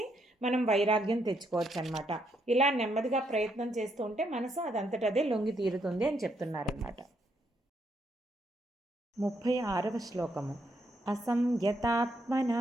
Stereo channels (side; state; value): both; normal; correlation 0.75